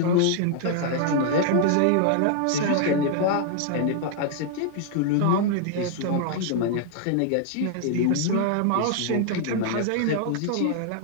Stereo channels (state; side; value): different; both; correlation 0.00